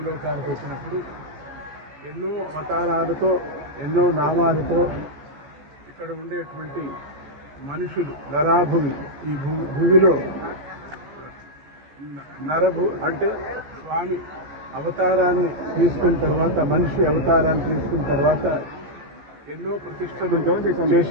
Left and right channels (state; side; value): late; left; 14 ms